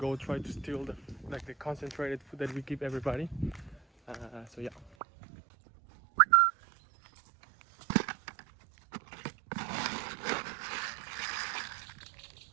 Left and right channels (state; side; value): drops out; left; at 4.9 s